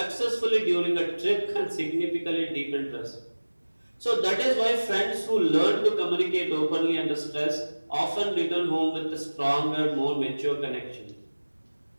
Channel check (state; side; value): inverted; both; correlation -1.00